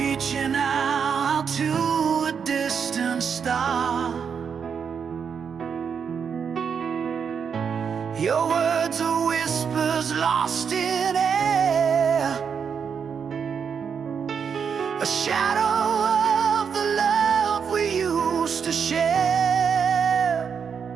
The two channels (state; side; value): quieter; left; 6.8 dB